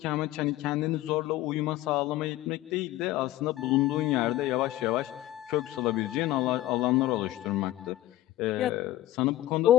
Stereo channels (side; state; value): right; quieter; 15.3 dB